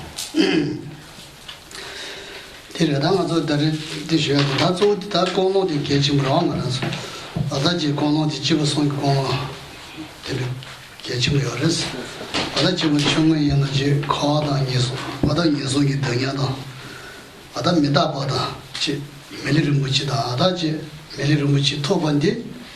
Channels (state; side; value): identical; both; correlation 1.00